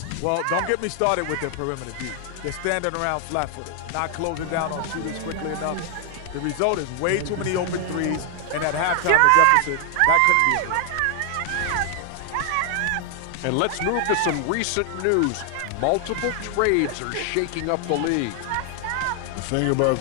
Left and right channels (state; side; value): different; both; correlation 0.00